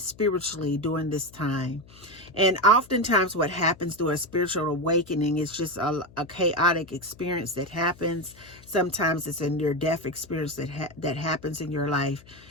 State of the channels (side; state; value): left; noise; hum, 23 dB below the sound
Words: during this time. And oftentimes what happens through a spiritual awakening is just a chaotic experience that happens. Sometimes it's a near-death experience that happens in your life.